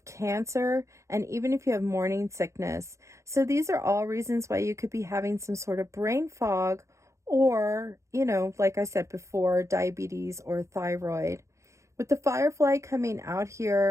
cancer, and even if you have morning sickness. So these are all reasons why you could be having some sort of brain fog, or, you know, like I said before, diabetes or thyroid. With the Firefly coming out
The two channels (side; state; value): left; late; 0.14 ms